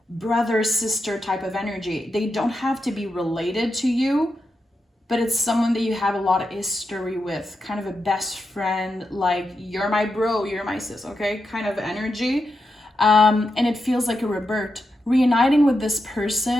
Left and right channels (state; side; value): normal; both; correlation 0.87